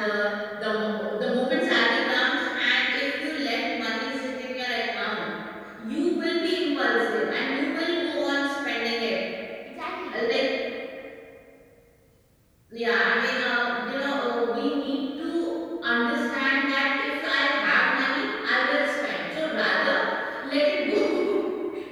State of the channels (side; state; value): both; identical; correlation 1.00